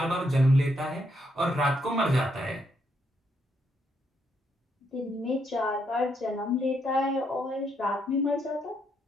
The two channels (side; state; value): both; normal; correlation 0.76